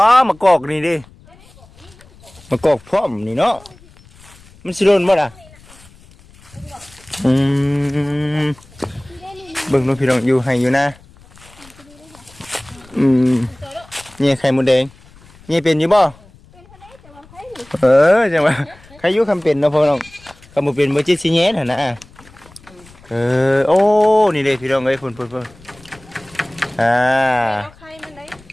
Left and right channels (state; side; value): noise; left; rumble, 25 dB below the sound